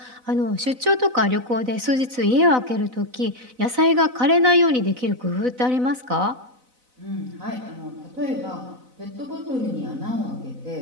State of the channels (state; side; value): late; left; 4.0 ms